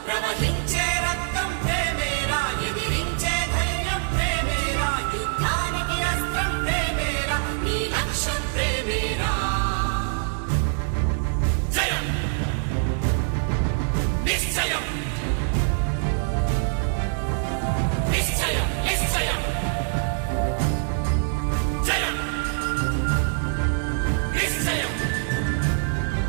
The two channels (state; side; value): silent; left; digital silence